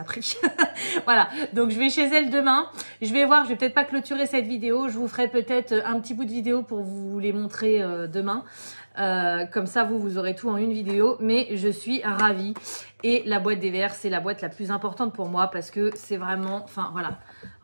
pris. Voilà, donc je vais chez elle demain. Je vais voir, je vais peut-être pas clôturer cette vidéo. Je vous ferai peut-être un petit bout de vidéo pour vous les montrer demain. Comme ça, vous aurez tout en une vidéo. Mais je suis ravie. Et la boîte des verres, c'est la boîte la plus importante pour moi parce que c'est vraiment... Enfin, voilà.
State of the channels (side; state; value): both; inverted; correlation -1.00